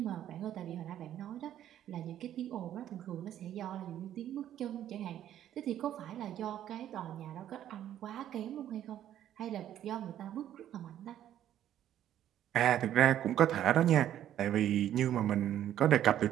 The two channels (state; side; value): quieter; left; 11.3 dB